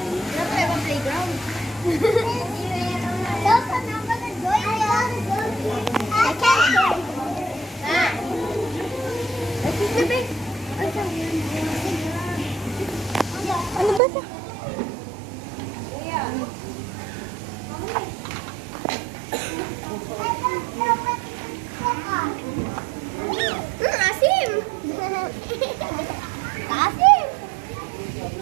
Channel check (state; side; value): drops out; left; at 14.0 s